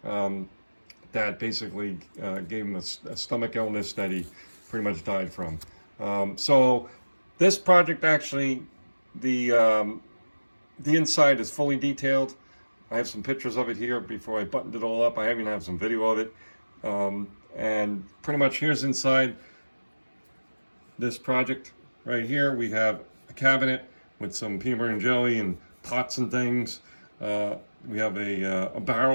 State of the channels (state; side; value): inverted; both; correlation -1.00